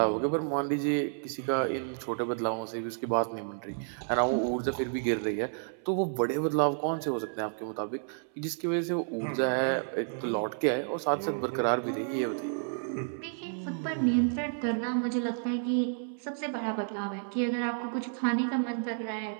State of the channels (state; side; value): silent; left; 57 dB below the other